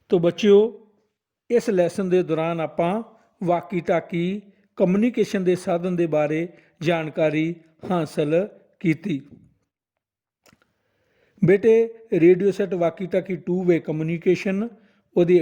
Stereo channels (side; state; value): both; identical; correlation 1.00